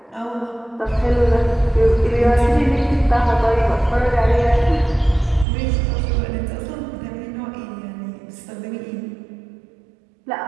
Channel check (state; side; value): drops out; left; at 5.5 s